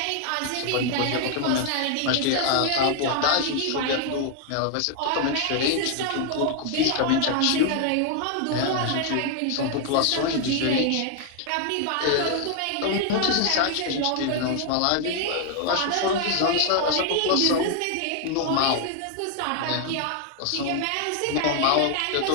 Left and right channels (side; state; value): both; different; correlation 0.00